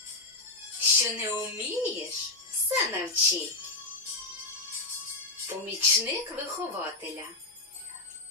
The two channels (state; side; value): quieter; right; 3.1 dB